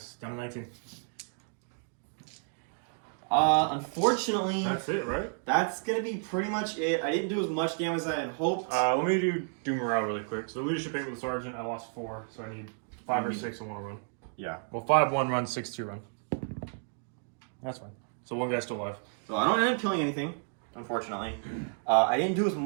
Down to 19. Unfortunately, That's it, right? that's gonna be pretty much it. I didn't do as much damage as I had hoped. Let me do morale really quick. So leadership 8 with the sergeant. I lost 4, so I need 5 or 6 and 1 run. Yeah. Well, 5 1 run, 6 2 run. That's fine. So 1 guy's still alive. So I don't end up killing anything, unfortunately. I didn't do as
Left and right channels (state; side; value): silent; left; 56 dB below the other